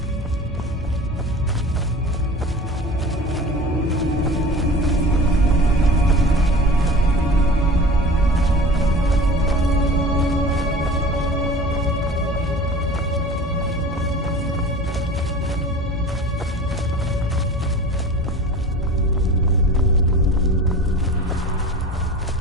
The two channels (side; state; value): both; normal; correlation 0.38